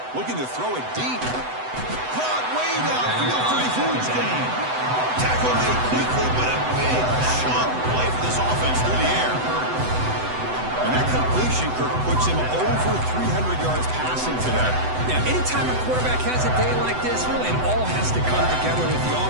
Looking to throw it deep. Caught way downfield for a huge gain. Tackle made quickly, but a big chunk play for this offense through the air. And that completion, Kirk, puts him over 300 yards passing today. Yeah, anytime a quarterback has a day like this, really it all has to come together with the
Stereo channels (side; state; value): left; late; 7.9 ms